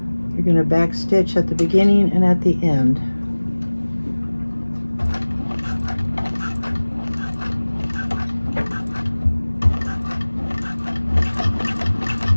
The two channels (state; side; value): inverted; both; correlation -1.00